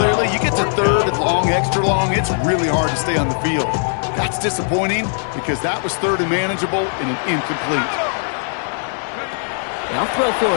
you get to 3rd and long, extra long, it's really hard to stay on the field. That's disappointing because that was 3rd and manageable and an incomplete. They'll throw for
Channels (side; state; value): right; silent; 66 dB below the other